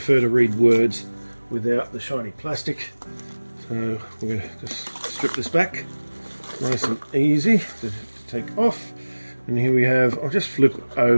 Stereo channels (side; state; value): both; inverted; correlation -1.00